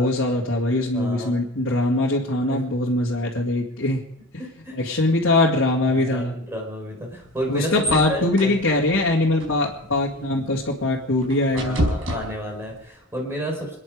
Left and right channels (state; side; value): normal; both; correlation 0.35